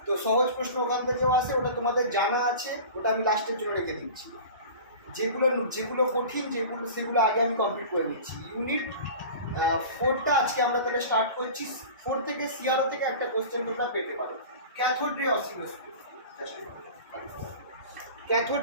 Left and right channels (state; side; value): inverted; both; correlation -0.36